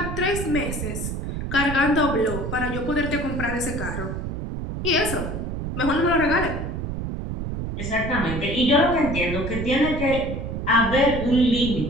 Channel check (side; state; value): right; noise; rumble, 4 dB below the sound